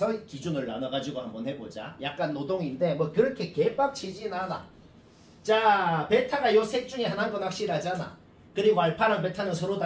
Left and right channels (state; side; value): identical; both; correlation 1.00